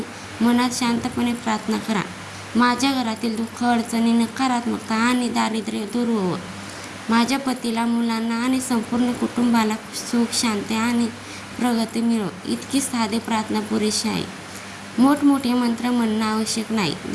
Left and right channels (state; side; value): identical; both; correlation 1.00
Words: मनात शांतपणे प्रार्थना करा. माझ्या घरातील दुःख, अडचणी, नकारात्मकता आणि दारिद्र्य दूर होवो. माझ्या पतीला, मुलांना आणि संपूर्ण कुटुंबाला सुख, शांती आणि प्रगती मिळो. इतकी साधी प्रार्थना पुरेशी आहे. मोठमोठे मंत्र म्हणणं आवश्यक नाही.